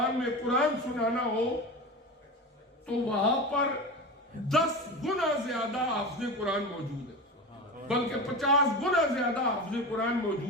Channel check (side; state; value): both; normal; correlation 0.27